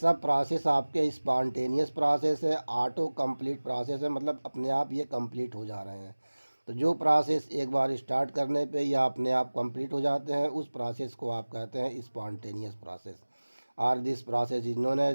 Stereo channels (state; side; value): inverted; both; correlation -1.00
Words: प्रोसेस आपके स्पॉन्टेनियस प्रोसेस है, ऑटो कंप्लीट प्रोसेस है, मतलब अपने आप ये कंप्लीट हो जा रहे हैं। तो जो प्रोसेस एक बार स्टार्ट करने पे या अपने आप कंप्लीट हो जाते हैं उस प्रोसेस को आप कहते हैं स्पॉन्टेनियस प्रोसेस, और this process is